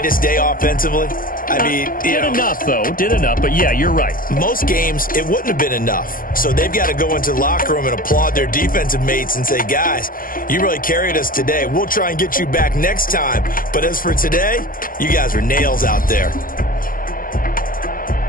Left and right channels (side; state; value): right; late; 0.41 ms